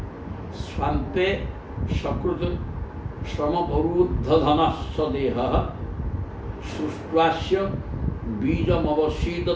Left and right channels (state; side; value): identical; both; correlation 1.00